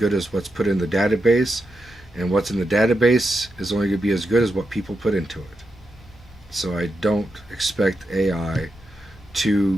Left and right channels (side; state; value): both; normal; correlation 0.86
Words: as what's put in the database. And what's in the database is only going to be as good as what people put into it. So I don't expect AI to